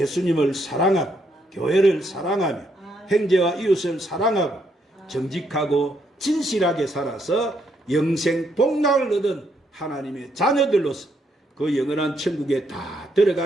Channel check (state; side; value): normal; both; correlation 0.75